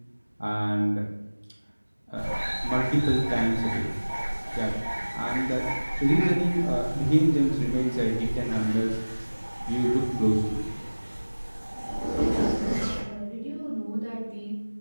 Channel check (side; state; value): both; inverted; correlation -1.00